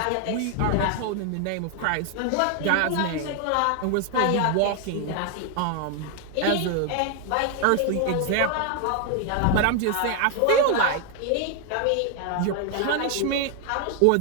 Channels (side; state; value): both; different; correlation 0.00